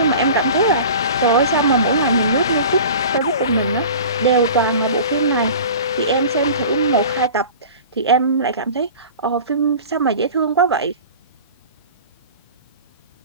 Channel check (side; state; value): both; inverted; correlation -0.39